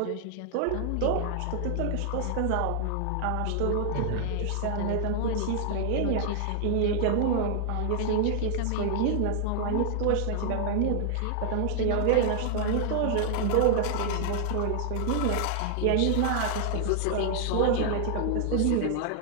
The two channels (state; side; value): different; both; correlation -0.01